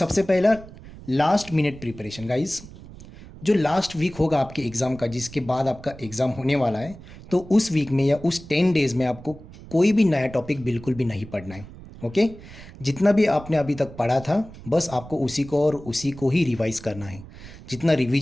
पहला, लास्ट मिनट प्रिपरेशन गाइज। जो लास्ट वीक होगा आपके एग्ज़ाम का, जिसके बाद आपका एग्ज़ाम होने वाला है, तो उस वीक में या उस 10 डेज़ में आपको कोई भी नया टॉपिक बिल्कुल भी नहीं पढ़ना है। ओके। जितना भी आपने अभी तक पढ़ा था बस आपको उसी को और उसी को ही रिवाइज करना है। जितना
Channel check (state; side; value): noise; right; rumble, 17 dB below the sound